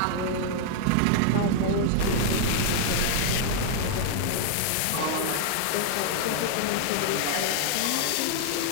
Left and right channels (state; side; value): different; both; correlation 0.00